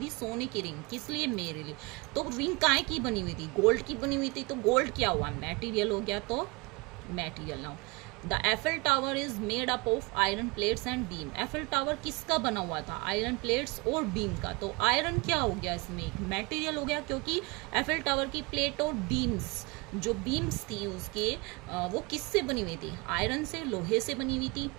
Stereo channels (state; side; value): quieter; left; 26.6 dB